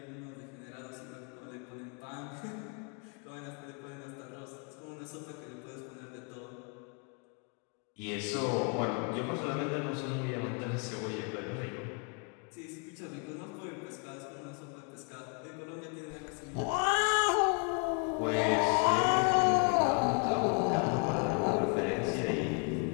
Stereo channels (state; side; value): quieter; right; 37.4 dB